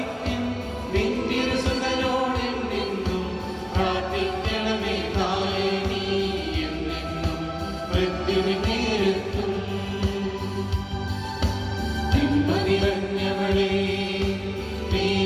നിന്തിരുസുതനോടെന്നും പ്രാർത്ഥിക്കണമേ. തായേ നീ എന്നെന്നും മൃത്യുവിൻ നേരത്തും നന്മ നിറഞ്ഞവളേ,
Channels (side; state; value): both; identical; correlation 1.00